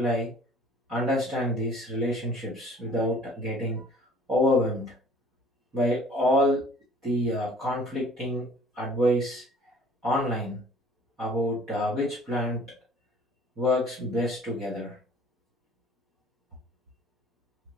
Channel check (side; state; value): both; normal; correlation 0.52